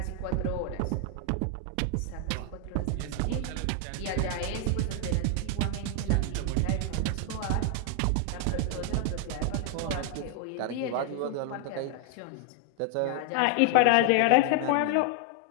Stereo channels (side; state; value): both; different; correlation 0.00